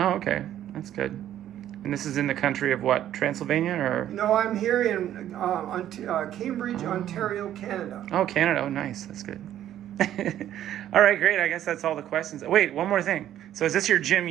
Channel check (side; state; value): left; quieter; 11.6 dB